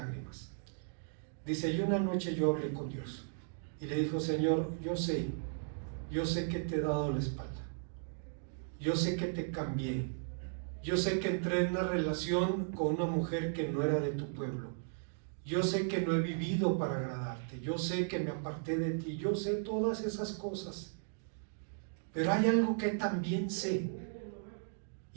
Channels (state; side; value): silent; left; digital silence